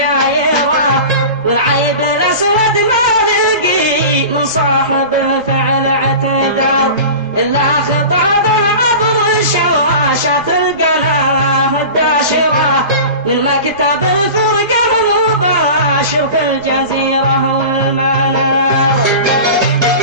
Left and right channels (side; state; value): both; inverted; correlation -0.34